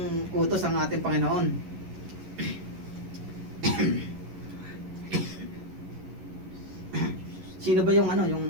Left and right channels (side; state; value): left; late; 11 ms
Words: utos ang ating Panginoon. Sino ba yung ano,